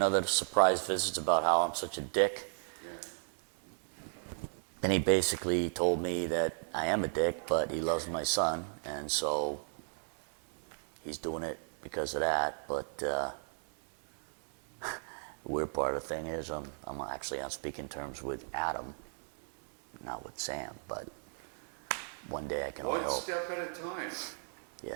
surprise visits about how I'm such a dick. And he basically told me that I am a dick, but he loves my son, and so he's doing it because of that. But the weird part of the thing is I'm actually on speaking terms with Adam, not with Sam, but one day I can only hope. One step at a time.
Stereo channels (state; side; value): silent; left; 55 dB below the other